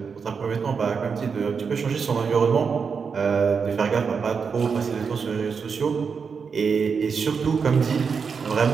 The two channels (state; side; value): quieter; left; 5.8 dB